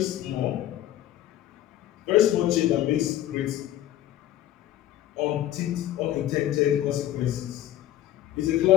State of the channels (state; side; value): quieter; right; 13.1 dB